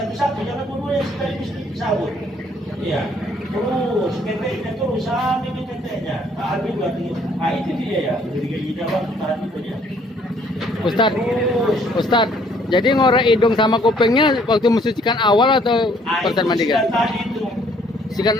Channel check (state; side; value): normal; both; correlation 0.63